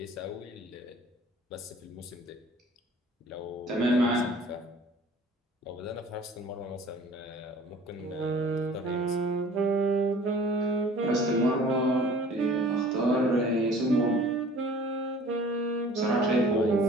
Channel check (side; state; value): both; normal; correlation 0.49